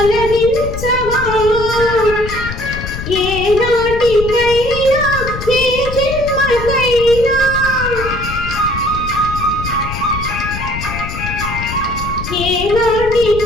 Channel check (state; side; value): noise; left; rumble, 8 dB below the sound